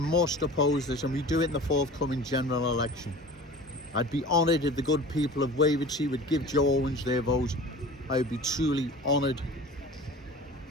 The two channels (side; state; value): both; normal; correlation 0.39